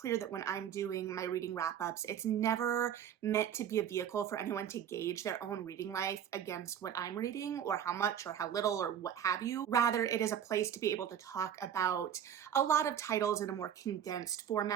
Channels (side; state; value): left; quieter; 9.4 dB